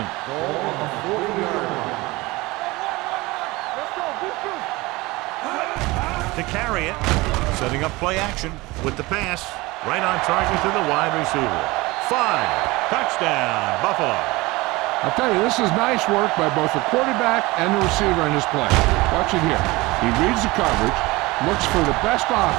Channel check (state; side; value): quieter; left; 21.8 dB